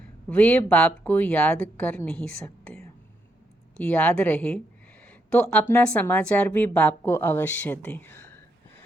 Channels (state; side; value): normal; both; correlation 0.78